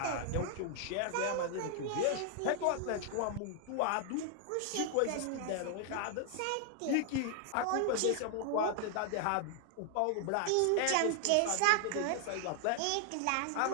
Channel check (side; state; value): both; different; correlation 0.00